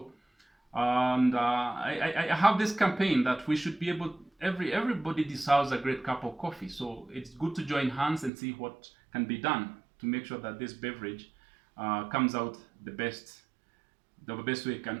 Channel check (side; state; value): left; drops out; at 8.3 s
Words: and I have this campaign that we should be able, everybody deserves a great cup of coffee. So it's good to join hands and see what can be done to make sure that this beverage comes out the best way